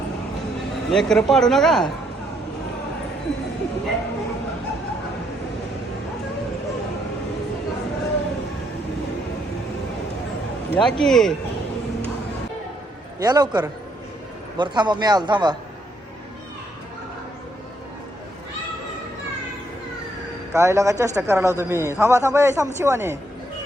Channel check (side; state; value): both; normal; correlation 0.73